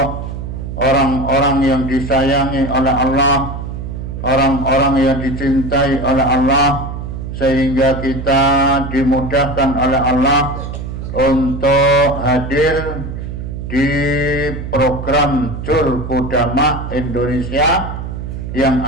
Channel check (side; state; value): right; noise; hum, 7 dB below the sound